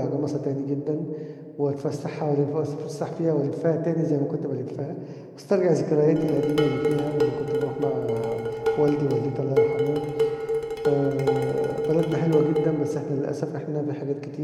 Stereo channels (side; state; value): both; identical; correlation 1.00